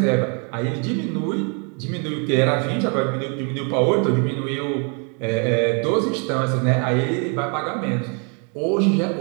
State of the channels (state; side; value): quieter; left; 37.6 dB